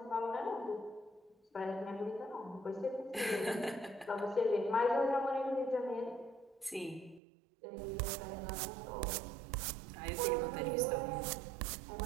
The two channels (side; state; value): left; drops out; at 7.2 s